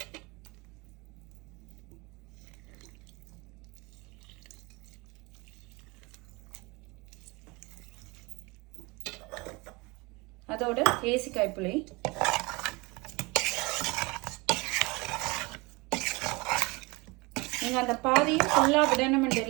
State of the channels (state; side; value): quieter; left; 25.6 dB